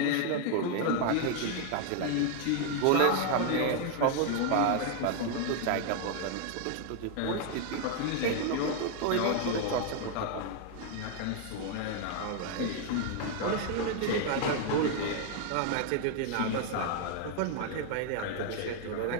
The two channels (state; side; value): different; both; correlation 0.00